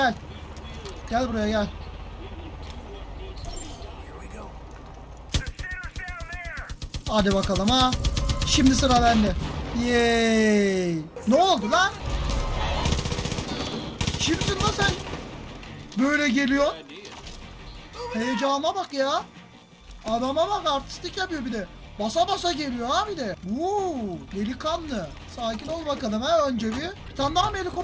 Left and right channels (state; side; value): identical; both; correlation 1.00